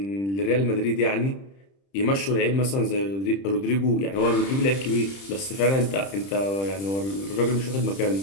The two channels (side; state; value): right; late; 30 ms